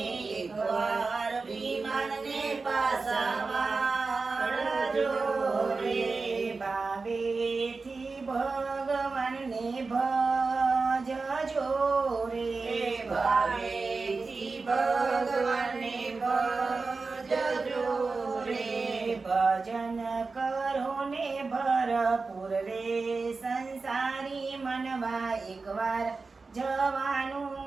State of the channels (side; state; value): left; quieter; 4.1 dB